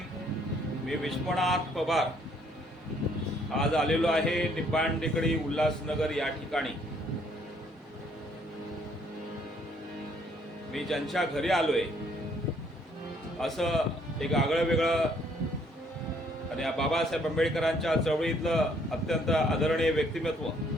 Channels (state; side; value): normal; both; correlation 0.65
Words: मी विश्वनाथ पवार आज आलेलो आहे निपाण टेकडी उल्हासनगर या ठिकाणी. मी ज्यांच्या घरी आलोय असं एक आगळं वेगळं आणि बाबासाहेब आंबेडकरांच्या चळवळीतलं अत्यंत आदरणीय व्यक्तिमत्व